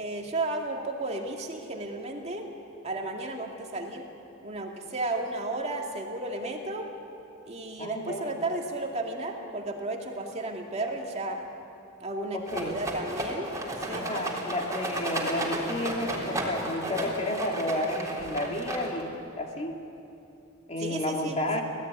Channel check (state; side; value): normal; both; correlation 0.07